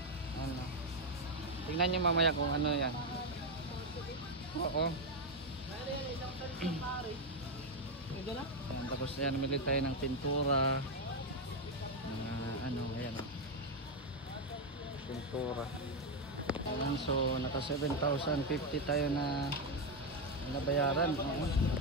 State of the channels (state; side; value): normal; both; correlation 0.06